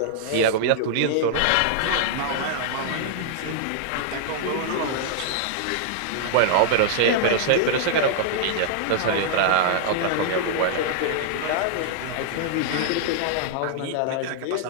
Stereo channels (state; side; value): different; both; correlation -0.01